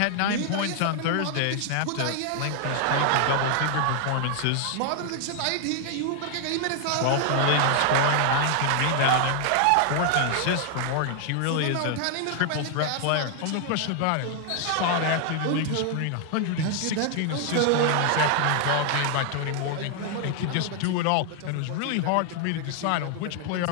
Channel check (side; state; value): both; different; correlation 0.00